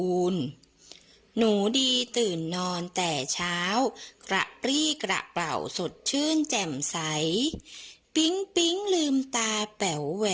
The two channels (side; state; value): both; identical; correlation 1.00